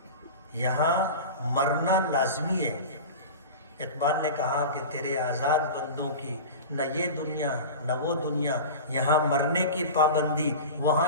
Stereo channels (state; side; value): inverted; both; correlation -0.30